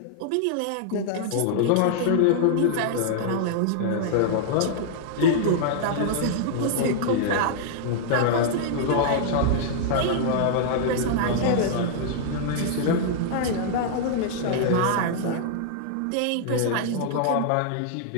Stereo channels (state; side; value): different; both; correlation -0.01